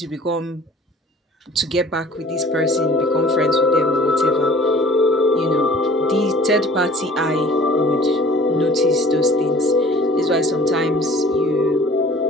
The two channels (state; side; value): normal; both; correlation 0.49